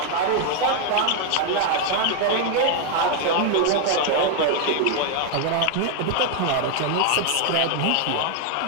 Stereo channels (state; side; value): different; both; correlation 0.00